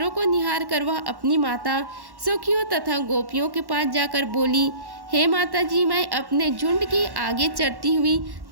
को निहार कर वह अपनी माता सखियों तथा गोपियों के पास जाकर बोली, हे माता जी, मैं अपने झुंड के आगे चढ़ती हुई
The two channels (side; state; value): left; late; 1.1 ms